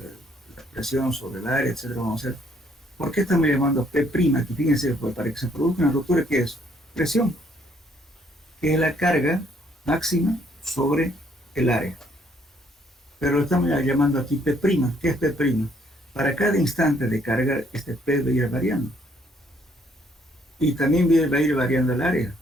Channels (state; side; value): normal; both; correlation 0.67